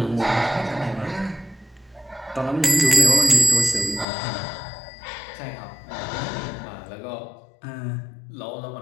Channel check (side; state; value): right; drops out; at 4.0 s